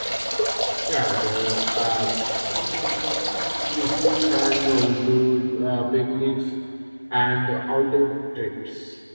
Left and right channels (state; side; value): inverted; both; correlation -1.00